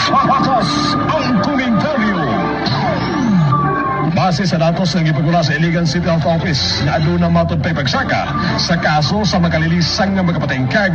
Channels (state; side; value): identical; both; correlation 1.00